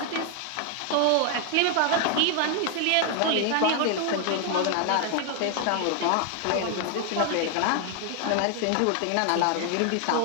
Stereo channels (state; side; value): different; both; correlation 0.00